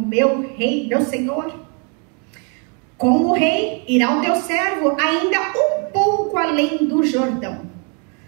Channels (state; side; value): quieter; left; 37.2 dB